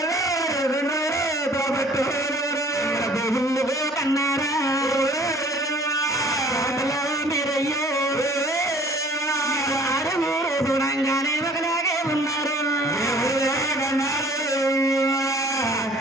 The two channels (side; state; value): both; normal; correlation 0.53